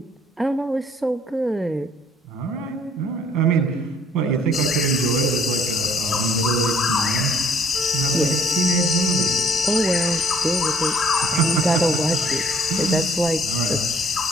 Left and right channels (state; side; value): normal; both; correlation 0.63